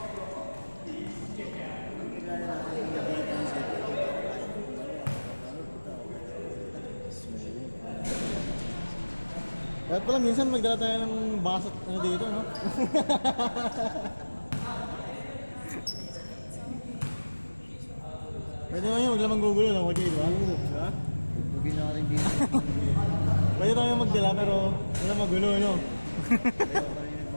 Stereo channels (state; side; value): inverted; both; correlation -1.00